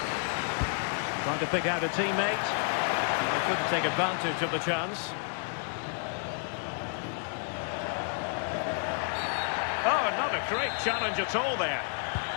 Trying to pick out a teammate. They couldn't take advantage of the chance. Oh, not a great challenge at all there.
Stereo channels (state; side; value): silent; right; 58 dB below the other